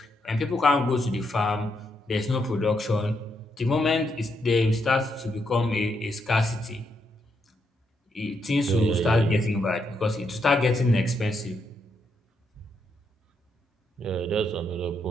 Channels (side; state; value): both; normal; correlation 0.79